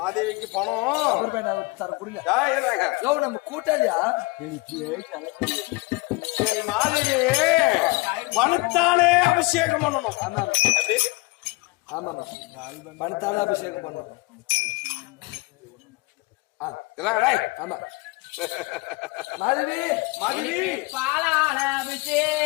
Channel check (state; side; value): quieter; right; 25.1 dB